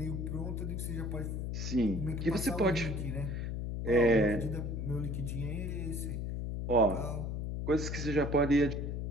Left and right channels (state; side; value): noise; left; hum, 3 dB below the sound